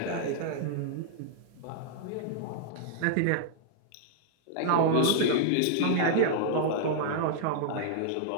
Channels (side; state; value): both; different; correlation -0.01